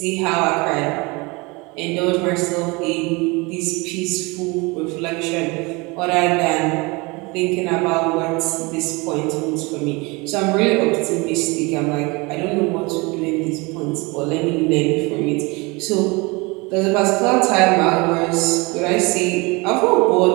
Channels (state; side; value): quieter; left; 26.1 dB